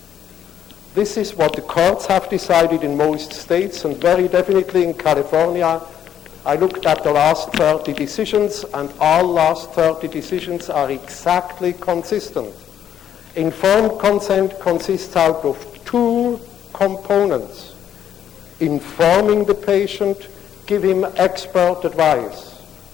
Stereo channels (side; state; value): right; quieter; 9.7 dB